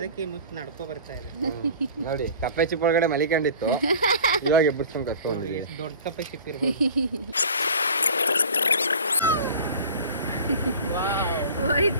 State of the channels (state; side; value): inverted; both; correlation -0.41